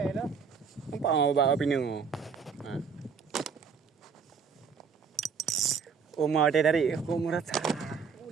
dah. Nampak bawa pinu. Ha. Oma dia dari aku merasa. Oh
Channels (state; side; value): quieter; left; 6.1 dB